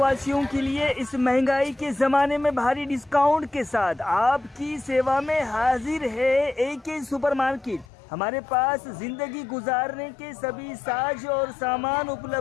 के लिए इस महंगाई के जमाने में भारी डिस्काउंट के साथ आपकी सेवा में हाजिर है AK सुपरमार्केट। हमारे पास जिंदगी गुजारने के सभी साज और सामान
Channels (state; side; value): drops out; right; at 7.9 s